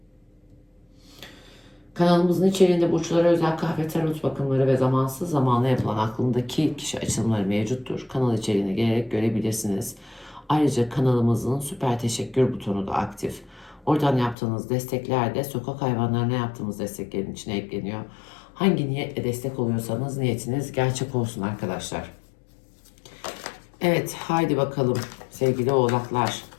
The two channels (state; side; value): drops out; right; at 14.4 s